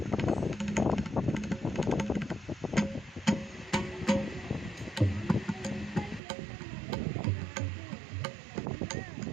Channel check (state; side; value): drops out; left; at 6.2 s